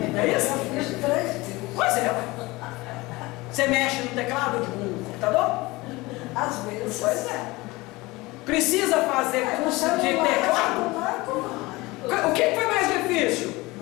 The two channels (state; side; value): quieter; right; 21.8 dB